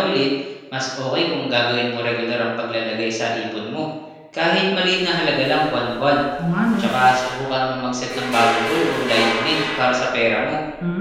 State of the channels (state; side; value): identical; both; correlation 1.00